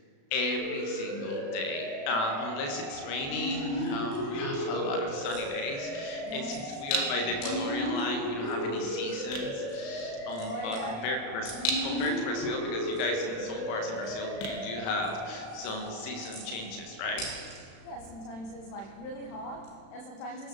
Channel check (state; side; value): late; right; 36 ms